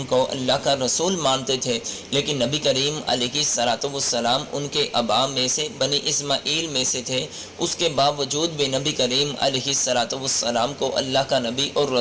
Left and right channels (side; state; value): both; identical; correlation 1.00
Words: کو اللہ کا رسول مانتے تھے، لیکن نبی کریم علیہ السلام ان کے آبا میں سے بنی اسماعیل میں سے تھے، اس کے باوجود بھی نبی کریم علیہ السلام کو اللہ کا نبی اور